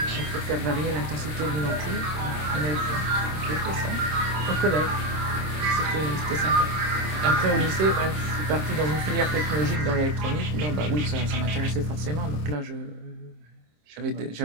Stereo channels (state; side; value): late; left; 26 ms